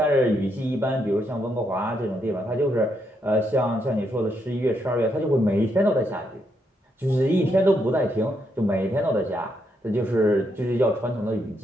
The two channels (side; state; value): both; normal; correlation 0.78